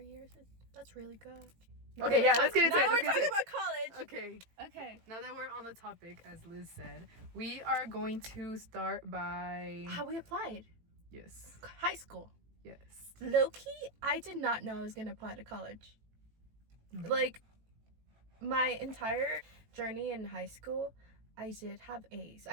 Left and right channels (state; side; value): late; left; 18 ms